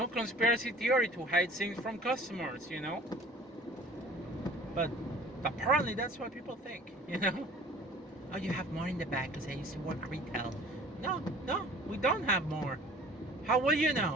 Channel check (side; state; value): both; normal; correlation 0.48